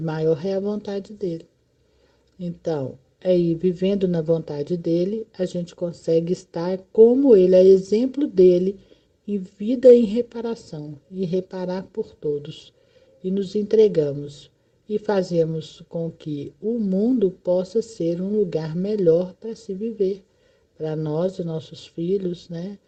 é a vontade dele. Então, aí, vivendo na vontade dele, a gente consegue estar como ele, é exemplo dele, em vida e em reparação, e reparar por todos. E nos entregamos e fazemos com que o mundo possa ser um lugar melhor para se viver, para nós e nossos filhos, né?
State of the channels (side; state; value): both; identical; correlation 1.00